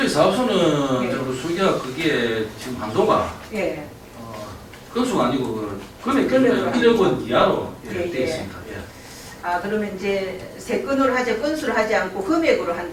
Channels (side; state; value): both; identical; correlation 1.00